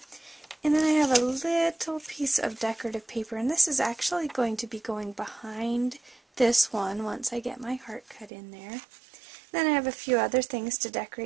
and then I have a little piece of decorative paper, and this is actually going to be going behind this one once I get my heart cut in there. Then I have a few other things to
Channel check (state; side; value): drops out; left; at 8.3 s